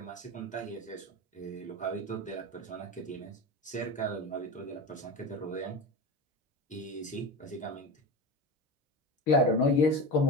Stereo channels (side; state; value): both; normal; correlation 0.25